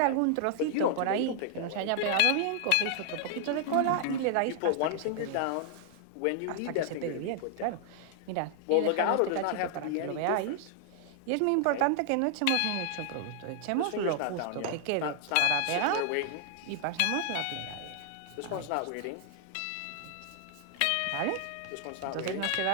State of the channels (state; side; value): different; both; correlation 0.00